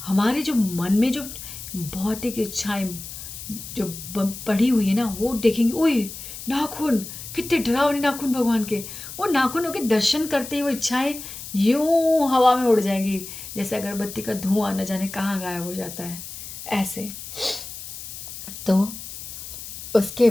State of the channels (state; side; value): noise; left; hiss, 11 dB below the sound